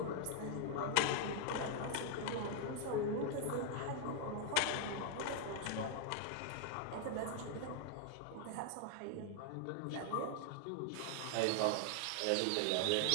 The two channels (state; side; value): different; both; correlation 0.00